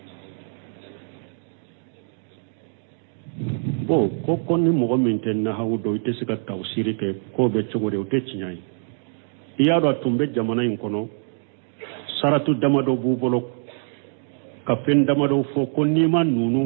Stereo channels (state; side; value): silent; left; digital silence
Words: bon ko ni mɔgɔ min tɛ nahawu dɔn i tɛ se ka tawsiri kɛ k'o bɛ cogo di o tɛ tiɲɛ ye i y'a dɔn a tun bɛ jamana in kɔnɔ saratu damadɔ b'u bolo ka fɛn damadɔ fɔ ko n'i ma